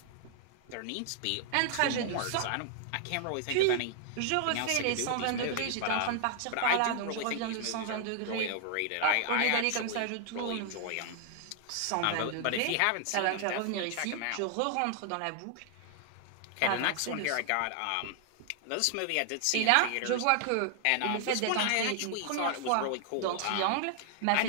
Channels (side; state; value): both; different; correlation 0.00